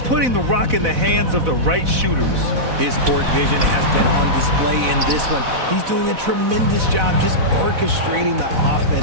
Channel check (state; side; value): late; left; 4.0 ms